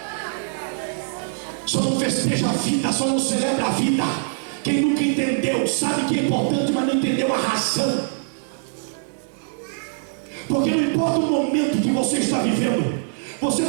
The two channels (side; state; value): left; silent; digital silence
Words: Só não festeja a vida, só não celebra a vida quem nunca entendeu, sabe que é importante, mas não entendeu a razão. Porque não importa o momento que você está vivendo, você